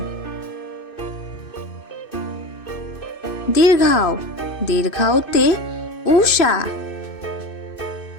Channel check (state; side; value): late; right; 2.6 ms